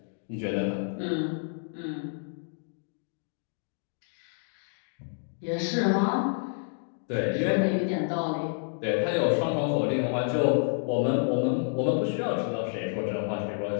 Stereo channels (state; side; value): silent; right; digital silence